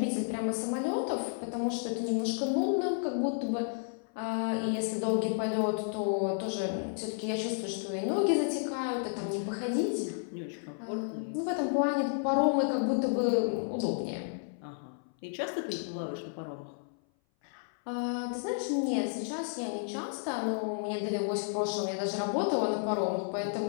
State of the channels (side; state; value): right; silent; 56 dB below the other